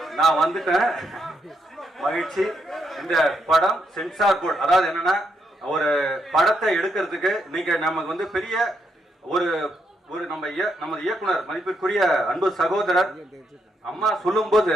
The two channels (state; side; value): normal; both; correlation 0.78